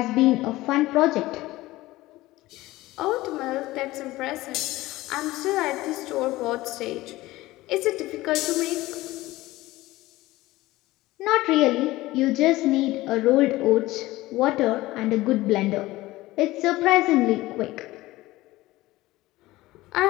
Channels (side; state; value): right; quieter; 18.2 dB